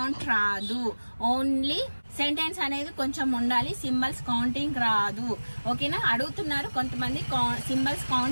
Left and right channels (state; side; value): inverted; both; correlation -1.00